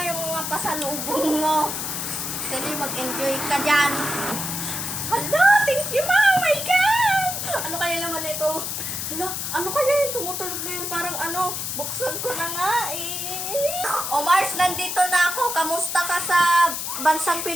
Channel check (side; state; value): left; noise; hiss, 4 dB below the sound